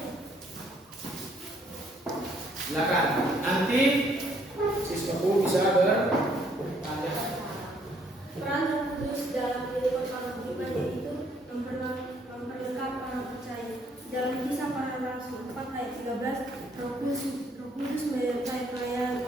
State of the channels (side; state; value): both; normal; correlation 0.66